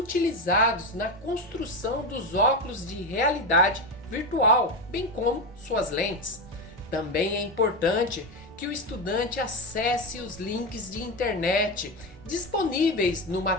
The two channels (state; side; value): normal; both; correlation 0.15